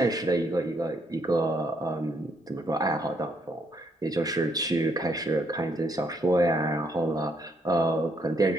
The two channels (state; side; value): normal; both; correlation 0.72